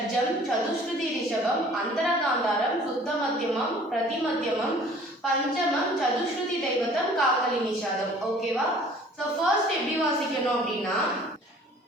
சதுஸ்ருதி ரிஷபம், அந்தரகாந்தாரம், சுத்த மத்தியமம், பிரதிமத்தியமம், பஞ்சமம், சதுஸ்ருதி தெய்வத்தம், காக்கலி நிஷாதம். ஓகேவா? ஸோ ஃபர்ஸ்ட் எப்படி வாசிக்கணும் அப்படின்னா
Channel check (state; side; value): normal; both; correlation 0.51